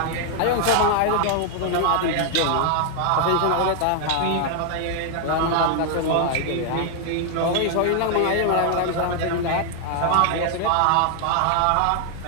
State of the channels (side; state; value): both; different; correlation 0.00